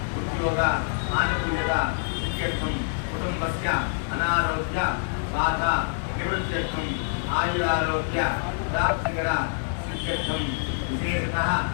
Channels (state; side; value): silent; right; digital silence